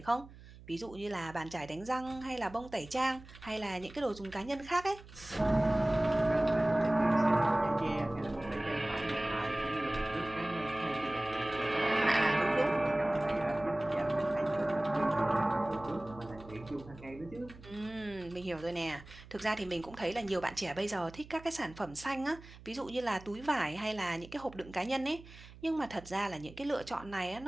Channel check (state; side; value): noise; right; hum, 19 dB below the sound